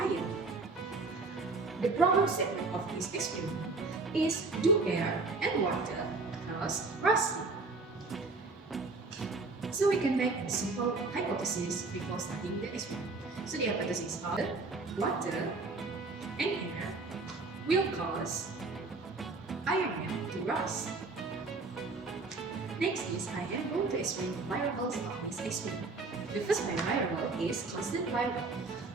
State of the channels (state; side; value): quieter; left; 3.7 dB